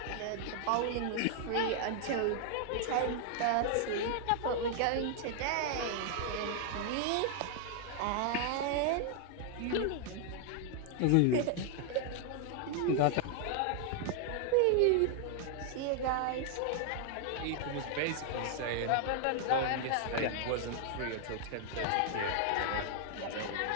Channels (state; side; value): different; both; correlation 0.00